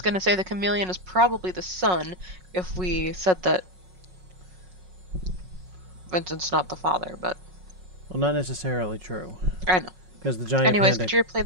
going to say the chameleon is probably the son if we said that Vincent's not the father, but Well, not necessarily true. I know. Because the giant Anyways, panda... could you replay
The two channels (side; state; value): left; late; 5.4 ms